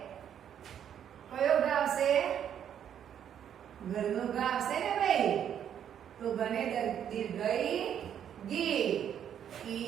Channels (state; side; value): quieter; left; 9.3 dB